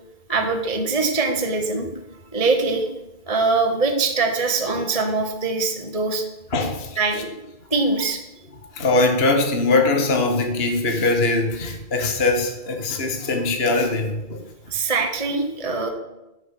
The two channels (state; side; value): late; right; 2.3 ms